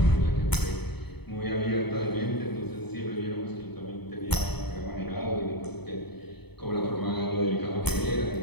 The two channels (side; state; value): right; late; 0.98 ms